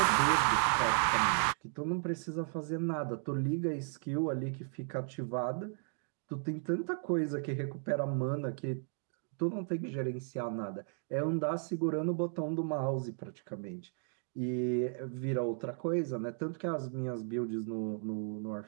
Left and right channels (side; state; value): left; silent; 54 dB below the other